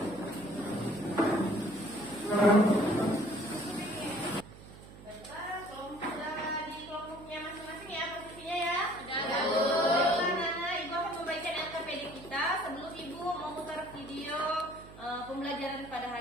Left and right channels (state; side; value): noise; right; hum, 18 dB below the sound